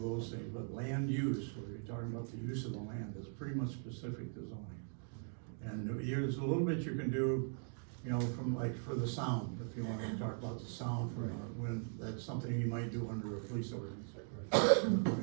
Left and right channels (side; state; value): left; silent; 51 dB below the other